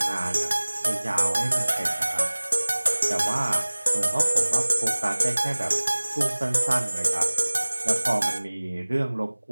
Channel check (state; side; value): inverted; both; correlation -1.00